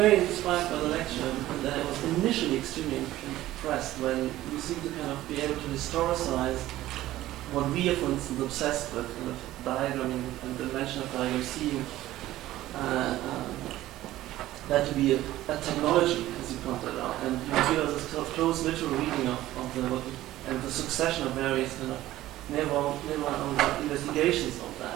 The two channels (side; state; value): left; quieter; 15.2 dB